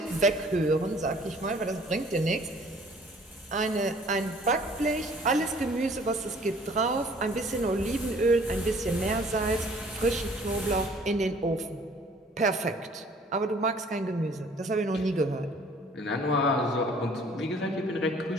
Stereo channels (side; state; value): both; normal; correlation 0.55